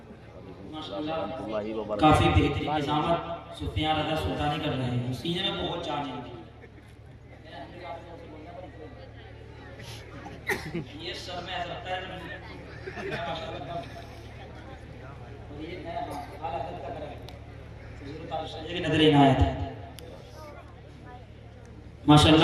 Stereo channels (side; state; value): both; identical; correlation 1.00